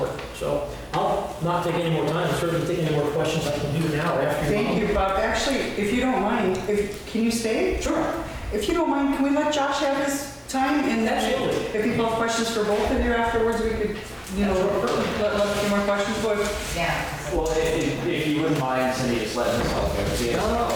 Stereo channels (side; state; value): both; identical; correlation 1.00